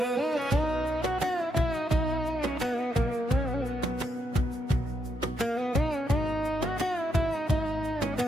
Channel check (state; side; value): normal; both; correlation 0.80